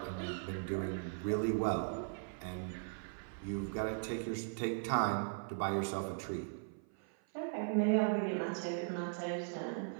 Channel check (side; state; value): left; silent; 52 dB below the other